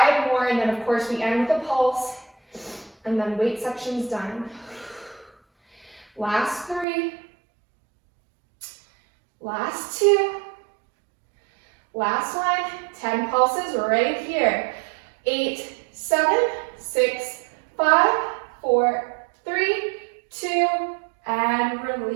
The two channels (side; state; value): left; drops out; at 6.9 s